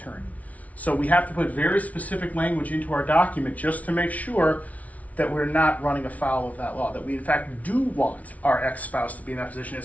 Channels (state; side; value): late; right; 0.069 ms